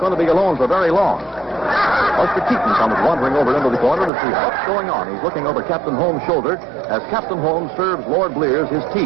to be alone for very long. Buster Keaton comes wandering over into the corner to see what's going on. He's looking over Captain Holmes' shoulder as Captain Holmes serves Lord Blears his tea.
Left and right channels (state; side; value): drops out; left; at 4.1 s